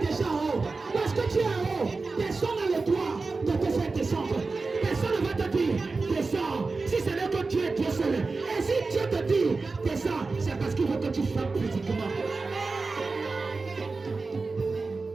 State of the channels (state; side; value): quieter; left; 3.9 dB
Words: en haut. Parce que tu es en haut, personne n'a le droit de te faire descendre. Personne ne va te dire descends. Si ce n'est que Dieu est Dieu seul. Et si Dieu te dit descends, c'est parce qu'il veut que tu frappes physiquement.